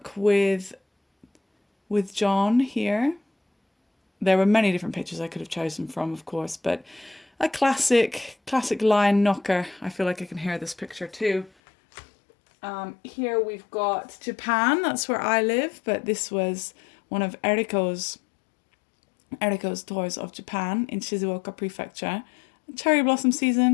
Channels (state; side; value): drops out; right; at 11.5 s